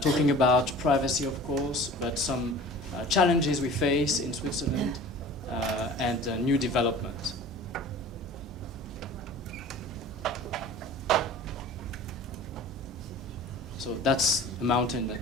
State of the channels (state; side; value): normal; both; correlation 0.41